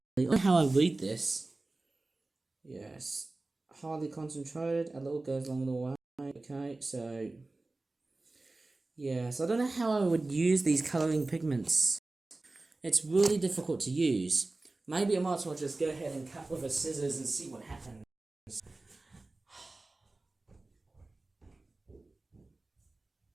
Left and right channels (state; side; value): quieter; left; 3.2 dB